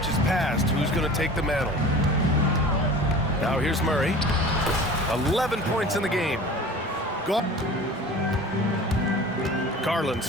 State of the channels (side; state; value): both; normal; correlation 0.40